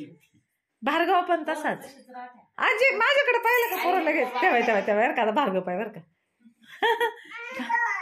भार्गव पण तसाच, आजी माझ्याकडे पाहिलं का पोरं लगेच तेव्हा तेव्हा तेव्हा बरं का, भार्गव पाय बरं का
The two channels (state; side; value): identical; both; correlation 1.00